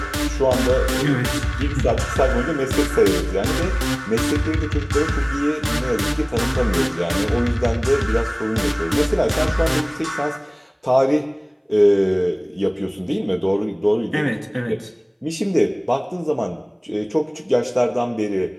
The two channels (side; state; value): both; identical; correlation 1.00